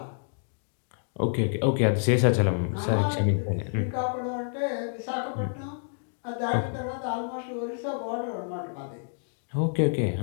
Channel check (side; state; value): right; silent; digital silence